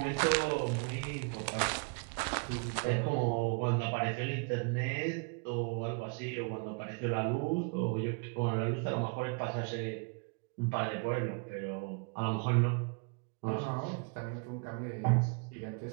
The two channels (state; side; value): quieter; left; 35.7 dB